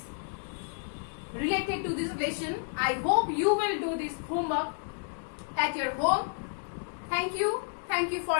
related to this lesson. I hope you will do this homework at your home. Thank you for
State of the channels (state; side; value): silent; right; 57 dB below the other